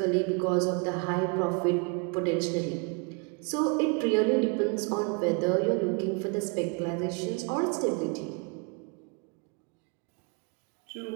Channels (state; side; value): quieter; left; 34.2 dB